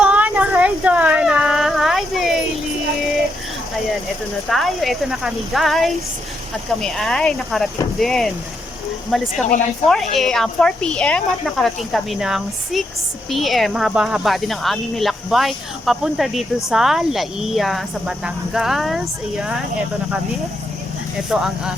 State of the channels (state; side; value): normal; both; correlation 0.80